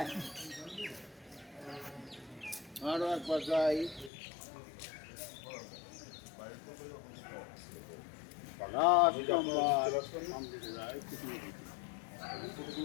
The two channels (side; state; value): right; drops out; at 4.1 s